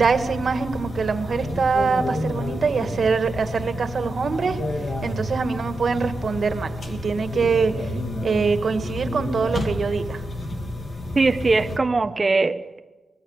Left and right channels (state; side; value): quieter; left; 3.2 dB